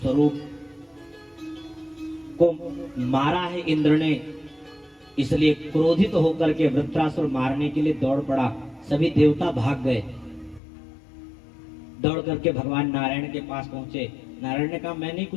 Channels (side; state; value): right; drops out; at 10.6 s